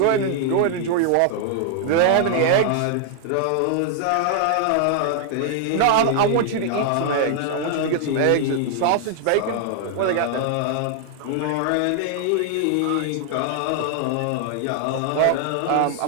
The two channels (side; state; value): both; different; correlation 0.00